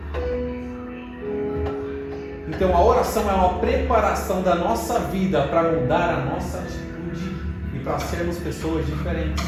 Então a oração é uma preparação da nossa vida para mudar a nossa atitude e para sermos pessoas diferentes,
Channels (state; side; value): identical; both; correlation 1.00